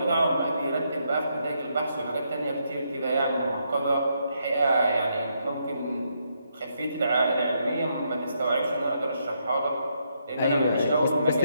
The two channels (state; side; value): inverted; both; correlation -0.77